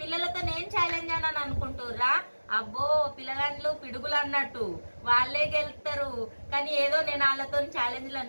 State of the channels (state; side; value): inverted; both; correlation -1.00